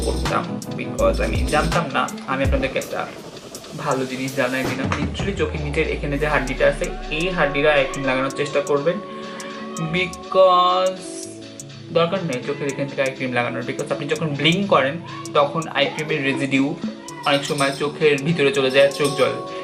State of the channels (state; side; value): identical; both; correlation 1.00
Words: করতাম, বিকজ আমি জানতাম না। আমি আপনাদেরকে একটা ভালো জিনিস জানাই দিলাম, লিটারালি চোখের নিচের এখানে যে হাড্ডিটা আছে, এই হাড্ডিটা আই ক্রিম লাগানোর চেষ্টা করবেন, বিকজ দরকার নেই চোখের এখান থেকে আই ক্রিম লাগানোর। বিকজ আপনি যখন ব্লিং করেন তখন আই ক্রিমের রেজিডিউ অনেক সময় চোখের ভিতরে চলে যায়, চোখ জল।